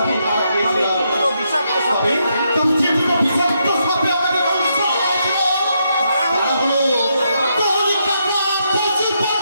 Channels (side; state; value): both; inverted; correlation -0.79